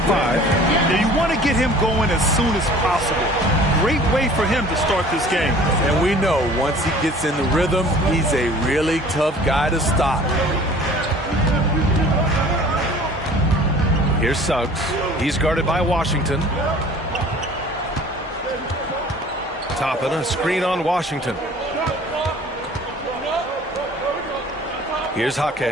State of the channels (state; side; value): normal; both; correlation 0.48